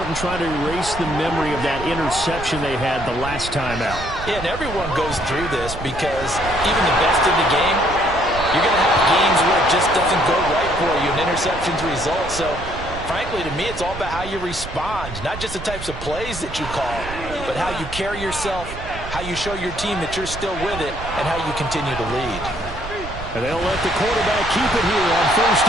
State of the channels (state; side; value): noise; right; rumble, 11 dB below the sound